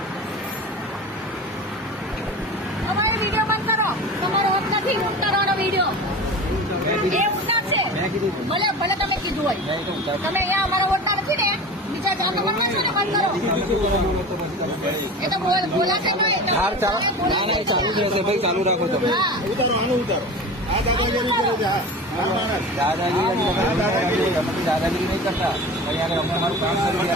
અમારો વિડીયો બંધ કરો, તમારો હક નથી ઉતારવાનો વિડીયો. એ ઉતારશે, ભલે ભલે તમે કીધું હોય. તમે અહીંયા અમારો વોટના નથી ને, બીજા જાતો વોટના છો ને, બંધ કરો. એ તો બોલાશે તો ચાલુ જ રહેશે ભાઈ, ચાલુ રાખો તમે. ઉતારો, આનું ઉતારો. આ દાદાગીરી કરે છે. દાદાગીરી નહીં કરતા. અહીંયા અમે અમારું કામ કરી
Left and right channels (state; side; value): normal; both; correlation 0.33